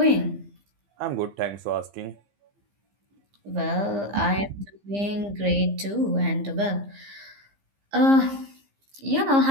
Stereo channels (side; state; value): left; late; 15 ms